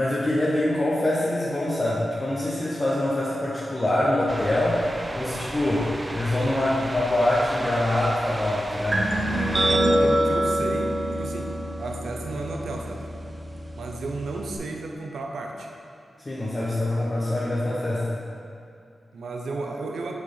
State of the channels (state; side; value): normal; both; correlation 0.92